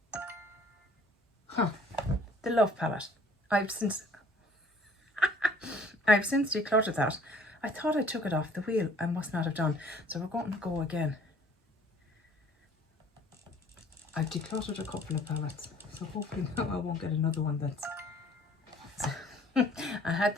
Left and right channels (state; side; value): normal; both; correlation 0.55